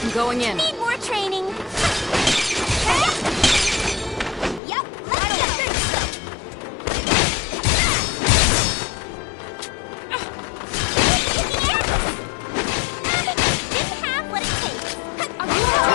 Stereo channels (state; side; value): drops out; right; at 4.6 s